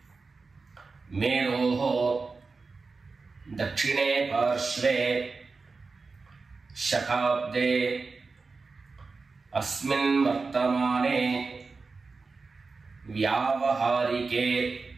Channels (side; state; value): left; quieter; 4.2 dB